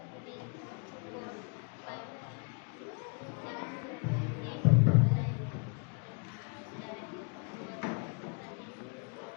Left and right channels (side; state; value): right; quieter; 36.9 dB